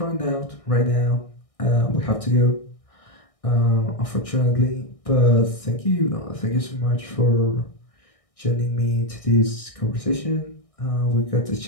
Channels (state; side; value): late; right; 1.6 ms